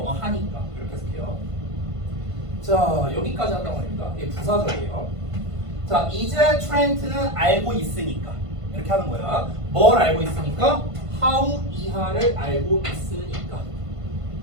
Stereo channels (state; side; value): late; left; 1.5 ms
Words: 하니까 이렇게 해석해요. 자, 여기까지 한다고 합니다. 이게 부사절이에요. 자, 이제 트렌트는 알고 있으니까 이렇게 하는 거야. 뭘 알고 있으니까? how 이하를 알고 있으니까.